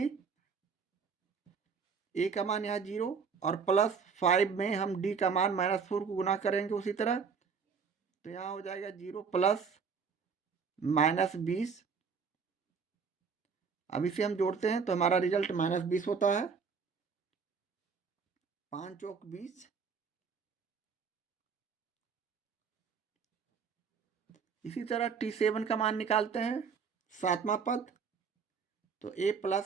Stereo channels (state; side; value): quieter; left; 5.8 dB